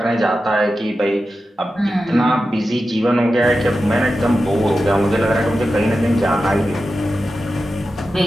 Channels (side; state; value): both; normal; correlation 0.92